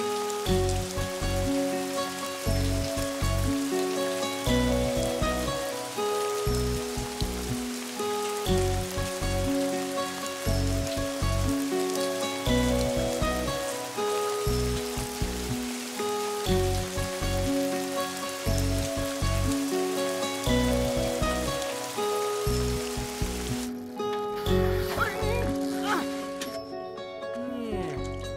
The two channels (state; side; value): identical; both; correlation 1.00